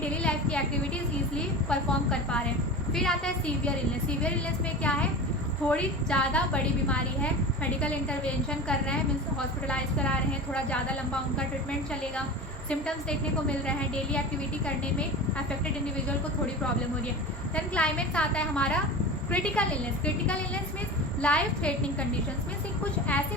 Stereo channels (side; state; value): both; normal; correlation 0.31